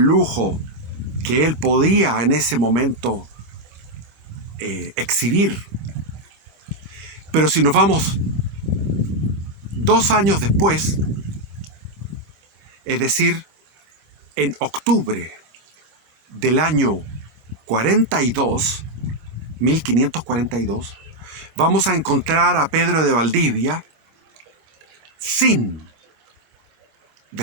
que él podía en ese momento exhibir. Pero si nos vamos 2 años después, es decir, en octubre del año 42, 1542, vamos a encontrar a Pedro de Valdivia sin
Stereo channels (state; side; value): late; left; 26 ms